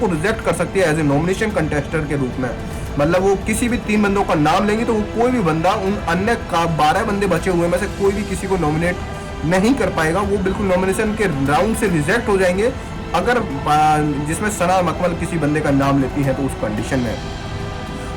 रिजेक्ट कर सकती है एज ए नॉमिनेशन कंटेस्टेंट के रूप में। मतलब वो किसी भी 3 बंदों का नाम लेंगे तो वो कोई भी बंदा उन अन्य 12 बंदे बचे हुए में से कोई भी किसी को नॉमिनेट नहीं कर पाएगा, वो बिल्कुल नॉमिनेशन के राउंड से रिजेक्ट हो जाएंगे, अगर जिसमें सना मकमल किसी बंदे का नाम लेती है तो उस कंडीशन में।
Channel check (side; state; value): both; identical; correlation 1.00